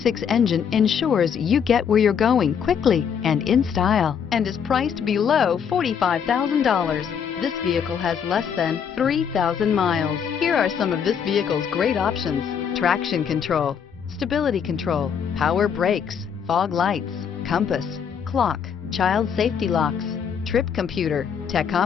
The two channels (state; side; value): quieter; right; 7.4 dB